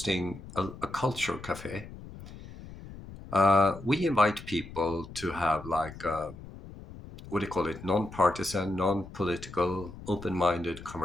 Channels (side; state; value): left; noise; rumble, 15 dB below the sound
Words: a culture cafe. We invite people to have like what do you call it, non-partisan, non-political, open-minded